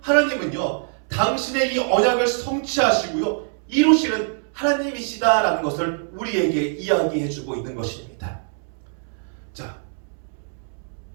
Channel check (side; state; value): left; silent; 63 dB below the other